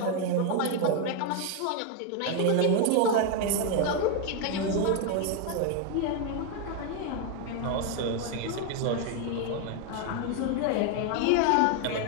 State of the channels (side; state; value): both; different; correlation 0.01